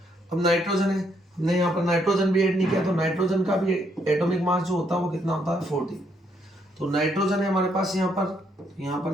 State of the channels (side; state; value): both; normal; correlation 0.73